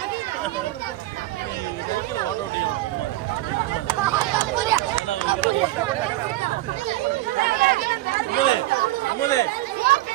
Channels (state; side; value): quieter; left; 17.2 dB